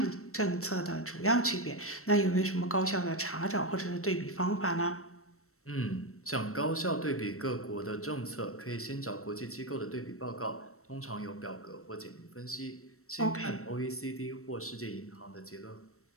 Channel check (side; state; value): right; late; 0.63 ms